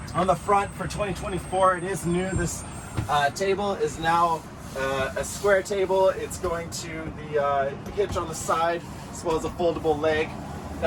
On the front for 2024, it is new. This table is now a square table. It's going to the hitch on the side as well as a foldable leg.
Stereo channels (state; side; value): identical; both; correlation 1.00